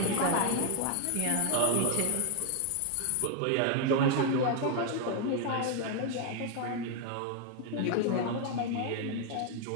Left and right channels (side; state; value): both; different; correlation 0.00